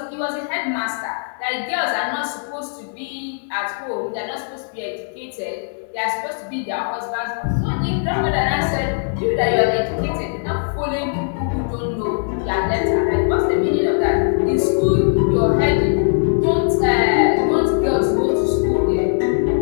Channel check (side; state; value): right; silent; digital silence